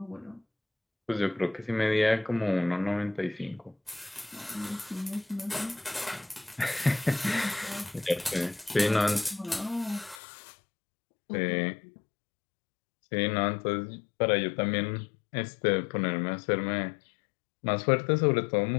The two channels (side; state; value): right; drops out; at 10.2 s